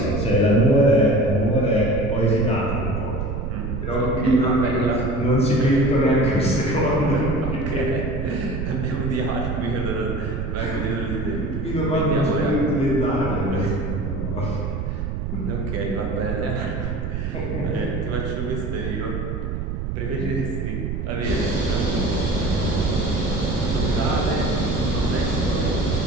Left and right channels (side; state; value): right; noise; rumble, 3 dB below the sound